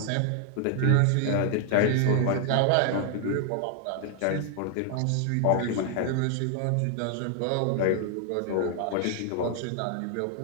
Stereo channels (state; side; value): different; both; correlation 0.00